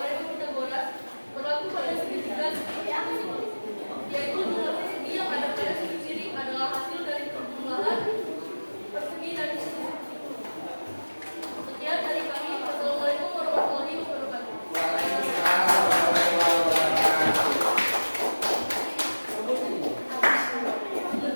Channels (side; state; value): both; inverted; correlation -1.00